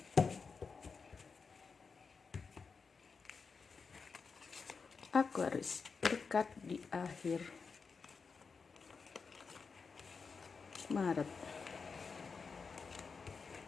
Aquarius berkat di akhir Maret.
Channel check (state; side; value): quieter; right; 5.1 dB